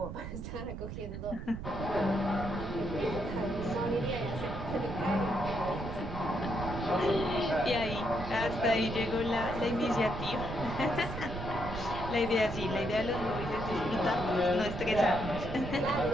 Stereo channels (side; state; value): right; noise; rumble, 7 dB below the sound